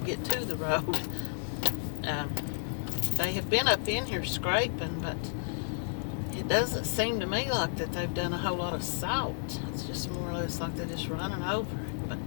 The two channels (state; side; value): silent; right; digital silence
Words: to the road. They have been up in here scraping, but it doesn't seem to me like that they've done a whole lot of salt. It's just more or less like they're just running over it. But